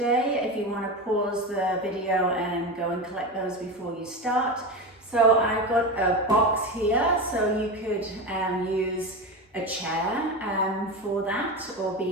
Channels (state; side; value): normal; both; correlation 0.21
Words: if you want to pause the video and go and collect those before you start. So I've got a box here, so you could use a chair for that, or